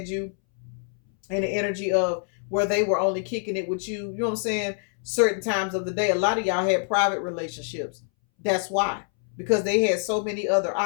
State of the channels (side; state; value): right; silent; 61 dB below the other